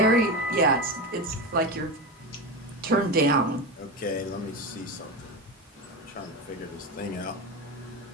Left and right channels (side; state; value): both; normal; correlation 0.19